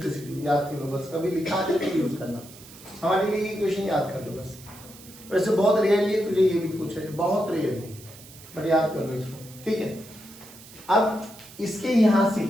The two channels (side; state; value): right; noise; hiss, 19 dB below the sound